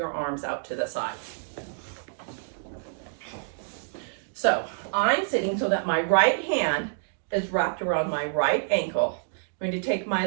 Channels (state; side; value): silent; left; digital silence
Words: arms out to the side. So I'm sitting so that my right hand is wrapped around my right ankle. I'm going to take